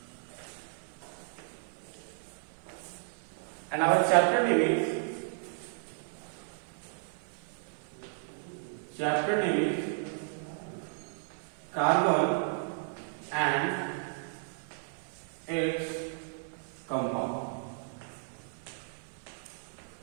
and our chapter name is carbon and its compound.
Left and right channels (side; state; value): left; silent; 55 dB below the other